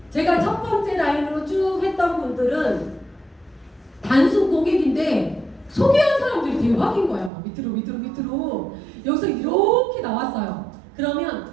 제가 첫 번째 라인으로 쭉 했던 분들은 단순 고객인데 소개한 사람들이 대박인 거야. 막 밑으로 여기서 이렇게 나왔어요. 그러면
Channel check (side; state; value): left; drops out; at 7.3 s